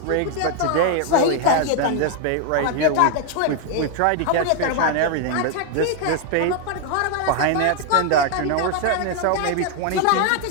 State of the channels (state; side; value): different; both; correlation 0.00